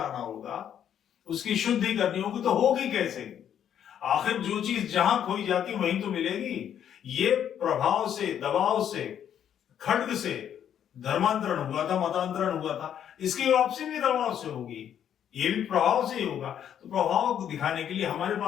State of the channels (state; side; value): quieter; right; 9.5 dB